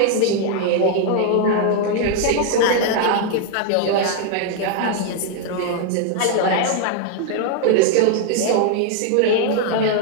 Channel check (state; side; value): different; both; correlation 0.00